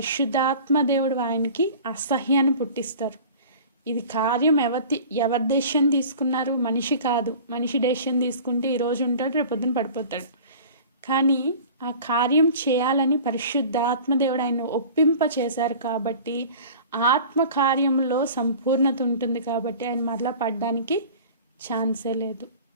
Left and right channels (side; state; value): both; inverted; correlation -0.41